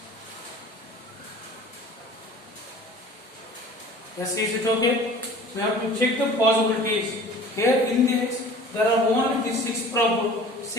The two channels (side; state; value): both; normal; correlation 0.45